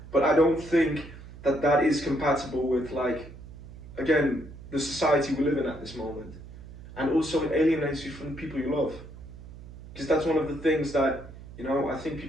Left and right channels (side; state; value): right; noise; hum, 16 dB below the sound